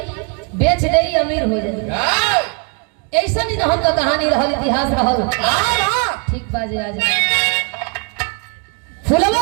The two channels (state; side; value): quieter; left; 35.0 dB